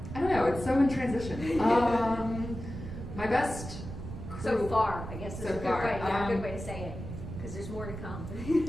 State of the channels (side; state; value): right; noise; rumble, 9 dB below the sound